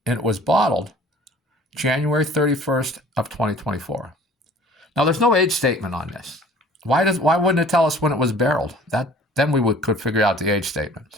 and it was bottled January 31st of 2024. Now there's no age statement on this. Why wouldn't it tell us when it was barreled? Then we could figure out the age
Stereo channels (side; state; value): both; normal; correlation 0.50